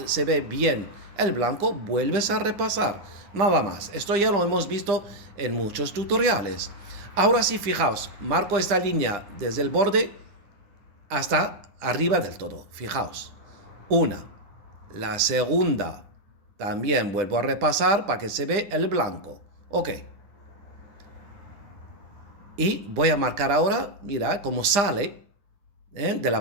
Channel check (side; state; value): left; late; 9.9 ms